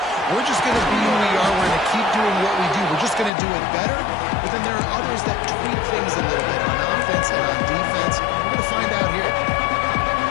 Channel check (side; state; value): right; drops out; at 3.3 s